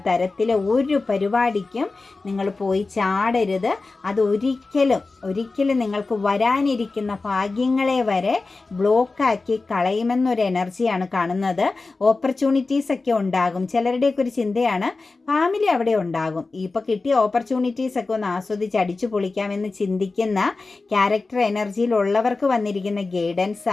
തരത്തിലെ ഒരു പരിപാടിക്കും നിങ്ങൾ പോയി ചാടരുത്. അത് ഒരിക്കലും നിങ്ങൾക്ക് വരാനിരിക്കുന്ന ഭാഗ്യങ്ങളെ വരെ ബ്ലോക്കാക്കി കളയുമെന്നൊരു എനർജിയാണ് കാണുന്നത്. ഓപ്പർച്യൂണിറ്റീസ് ഒക്കെ ഉണ്ടാകും. ചിലരുടെയൊക്കെ ഒരു ചിന്തയാണ് ഫാമിലി അവിടെ ഉണ്ടാകും, ഇപ്പോൾ കിട്ടിയ ഓപ്പർച്യൂണിറ്റീസ് ഒക്കെ ഒന്ന് ആസ്വദിച്ച് അടിച്ചു പൊളിക്കാമെന്ന് ചിന്തിക്കുന്ന ക്യാരക്ടർ എനർജിയിലുള്ളവർക്ക് വന്നിരിക്കുന്ന ഗൈഡൻസ്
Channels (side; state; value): right; quieter; 3.7 dB